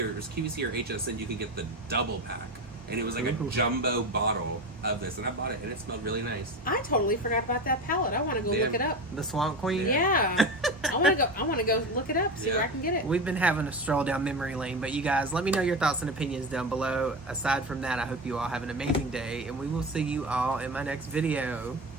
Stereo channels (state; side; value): normal; both; correlation 0.23